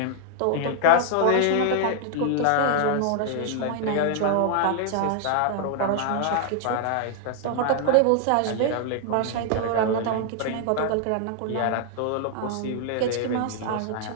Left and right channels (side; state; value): both; different; correlation 0.00